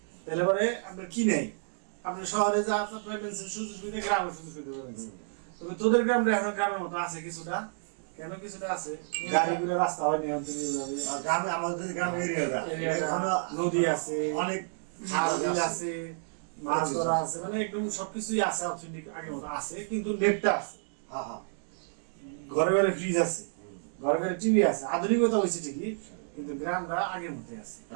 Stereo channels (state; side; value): silent; left; digital silence